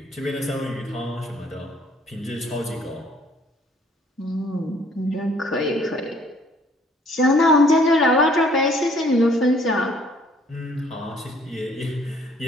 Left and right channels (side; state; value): both; normal; correlation 0.60